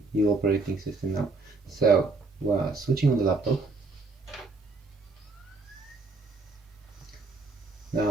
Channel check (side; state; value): left; quieter; 3.8 dB